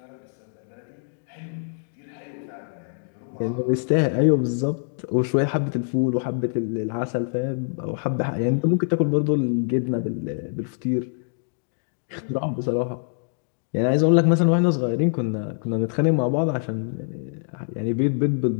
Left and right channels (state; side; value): silent; right; digital silence